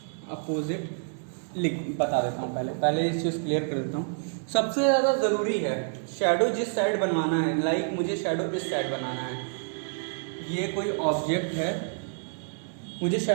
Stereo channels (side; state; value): left; silent; 59 dB below the other